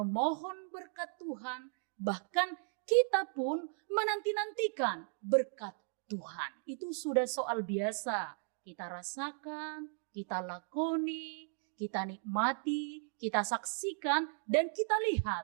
berkat Tuhan, bahkan kita pun menanti-nantikan berkat Tuhan. Itu sudah soal biasa. Kita rasakan, kita lakoni, kita nikmati, kita saksikan, dan kita lihat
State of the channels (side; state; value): left; silent; 54 dB below the other